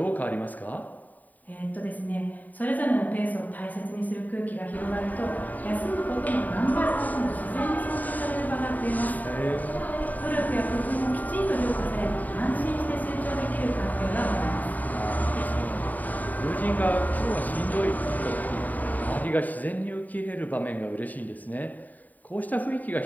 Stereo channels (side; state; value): right; late; 0.080 ms